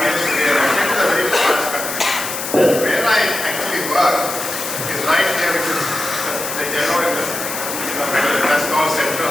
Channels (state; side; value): noise; left; hiss, 6 dB below the sound